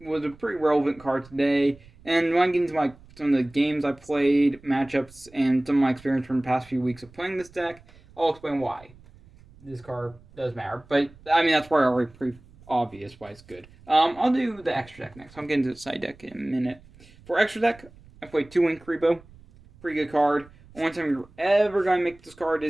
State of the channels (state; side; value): noise; right; rumble, 25 dB below the sound